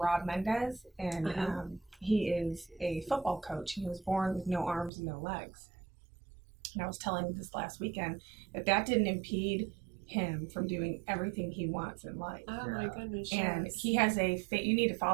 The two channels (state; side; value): drops out; left; at 4.9 s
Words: Mendez, and he is a football coach, and he was born with no arms and no legs. And I was telling him this last weekend that didn't impede him from doing everything he wants in life. Oh my goodness. And yes. he has you need to